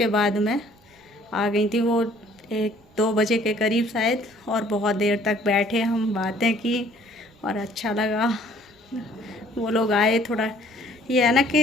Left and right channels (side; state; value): both; normal; correlation 0.58